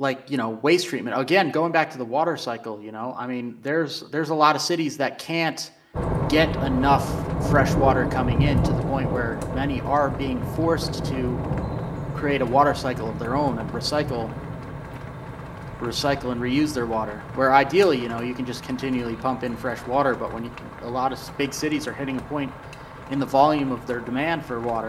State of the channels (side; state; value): both; identical; correlation 1.00